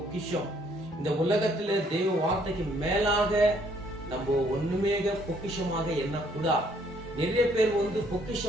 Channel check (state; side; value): normal; both; correlation 0.65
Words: இந்த உலகத்துல தேவ வார்த்தைக்கு மேலாக நம்ம ஒண்ணுமே பொக்கிஷமாக எண்ணக்கூடாது. நிறைய பேர்